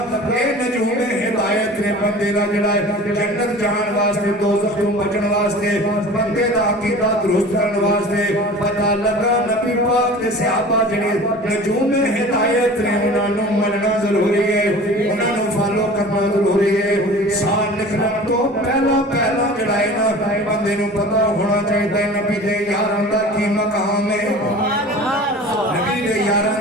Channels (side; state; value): both; normal; correlation 0.40